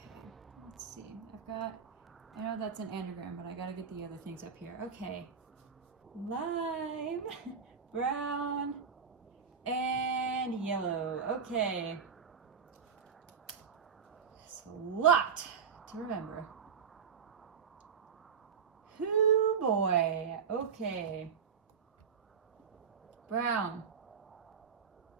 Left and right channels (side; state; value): left; quieter; 6.6 dB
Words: let's see. I know that's an anagram, but I gotta get the other things up here. Okay. Lime, brown, and yellow. Okay. It's a lot to remember. Hoo boy. Okay. Brown.